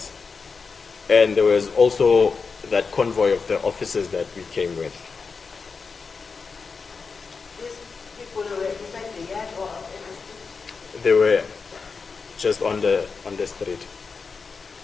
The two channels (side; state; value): right; quieter; 5.0 dB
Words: And there was also that convoy of the officers that we came with. These people were inside the yard or out in the street? They were just on the street.